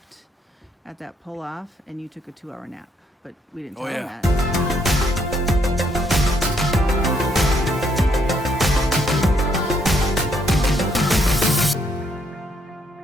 at that pull-off, and you took a 2-hour nap, but we didn't tell them that.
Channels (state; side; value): normal; both; correlation 0.71